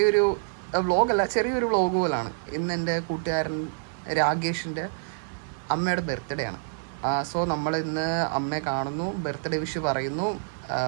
വ്ളോഗല്ല, ചെറിയൊരു വ്ളോഗ് പോലാണ്. ഇന്ന് എൻ്റെ കൂട്ടുകാരൻ രാകേഷിൻ്റെ അമ്മയുടെ ബർത്ത്ഡേ ആണ്. സോ നമ്മൾ ഇന്ന് അമ്മയെ കാണുന്നു, ബർത്ത്ഡേ വിഷ് പറയുന്നു,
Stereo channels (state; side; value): silent; left; digital silence